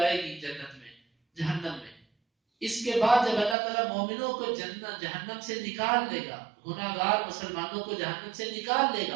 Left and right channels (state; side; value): drops out; left; at 3.6 s